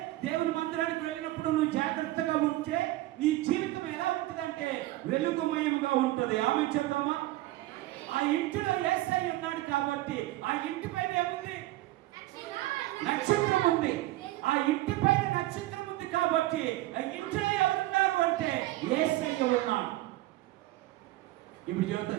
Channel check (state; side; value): quieter; left; 17.1 dB